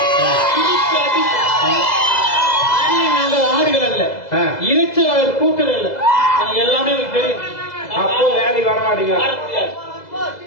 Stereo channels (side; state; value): right; late; 2.0 ms